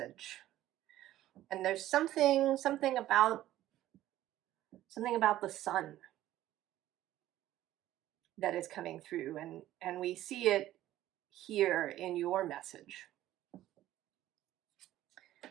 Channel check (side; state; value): left; quieter; 14.0 dB